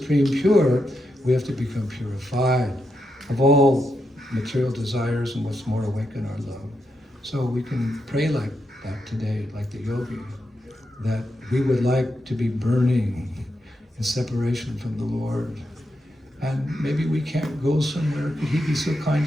pure, we have to become purified of all material desires and what's more awaken our love. So we can pray like that today, like the yogi, that we would like to be burning in separation from the Lord. And maybe we can't go somewhere. Could he be so kind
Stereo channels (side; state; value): both; normal; correlation 0.84